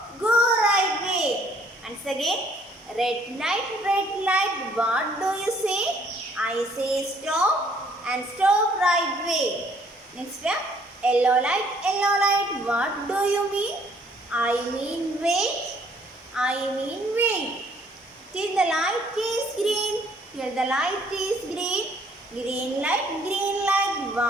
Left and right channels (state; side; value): normal; both; correlation 0.62